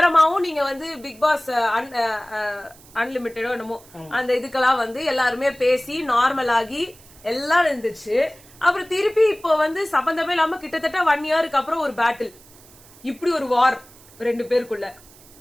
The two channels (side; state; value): right; noise; hiss, 24 dB below the sound